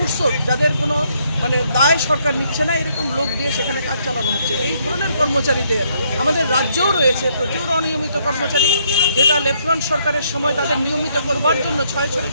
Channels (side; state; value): both; inverted; correlation -0.71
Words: যাদের কোনো মানে দায় সরকার নিচ্ছে না, এরকম লোক দিয়ে সেখানে কাজ চালানো হচ্ছে। এই ধরনের কর্মচারীদের আমাদের রাজ্যেও রয়েছে প্রচুর অনিয়মিত কর্মচারী, যেটা লেফটেন্যান্ট সরকারের সময় তাদের নিয়মিত করবার জন্য